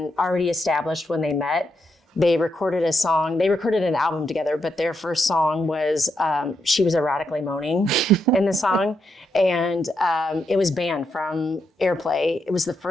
already established when they met. They recorded an album together, but their first song was, she was erotically moaning in the song. And it was banned from airplay. It was the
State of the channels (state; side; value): normal; both; correlation 0.81